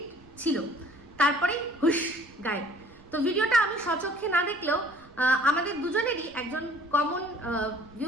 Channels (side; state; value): right; noise; rumble, 25 dB below the sound